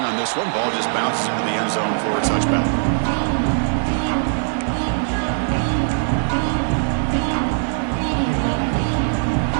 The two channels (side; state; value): left; silent; 65 dB below the other